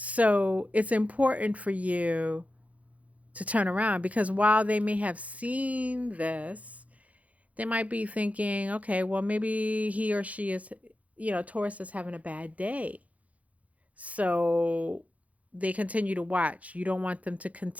it's important for you to turn around because while they may have seen this, they might be thinking, okay, well, maybe he or she is, Taurus is having a bad day. So they continue to watch. You don't want them to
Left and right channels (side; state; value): left; late; 0.068 ms